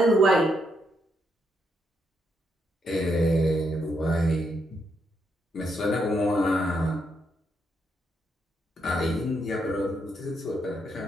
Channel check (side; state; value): both; normal; correlation 0.78